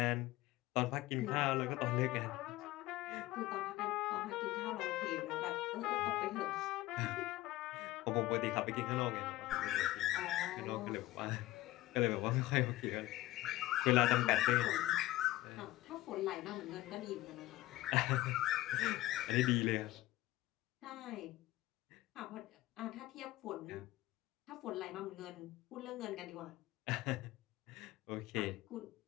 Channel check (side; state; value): right; quieter; 16.9 dB